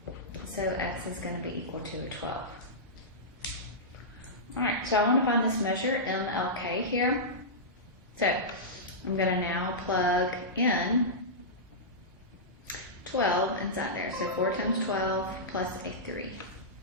So x is going to be equal to a 12. Alright, so I want to find this measure, MLK here. So I'm going to now plug in 12 inside there. So 4 times 12 plus a 3.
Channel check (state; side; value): normal; both; correlation -0.14